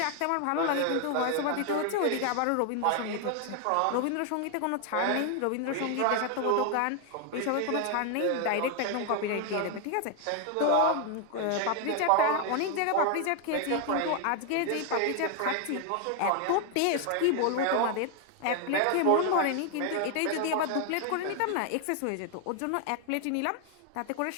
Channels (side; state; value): both; different; correlation 0.01